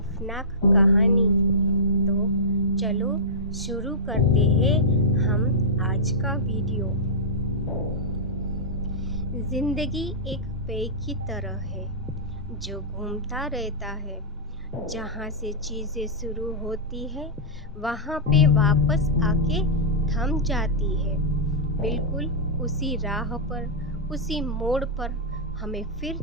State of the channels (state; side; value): normal; both; correlation -0.13